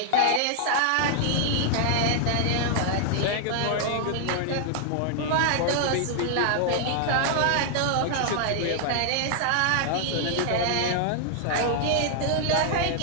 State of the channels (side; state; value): both; different; correlation 0.00